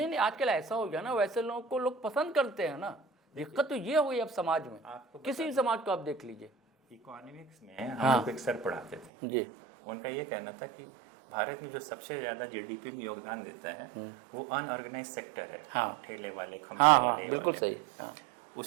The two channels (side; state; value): left; drops out; at 9.1 s